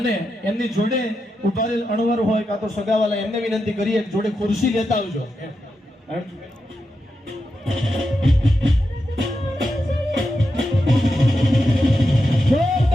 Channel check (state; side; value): normal; both; correlation 0.87